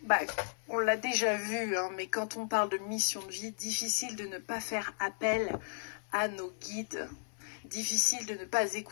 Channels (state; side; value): silent; right; 55 dB below the other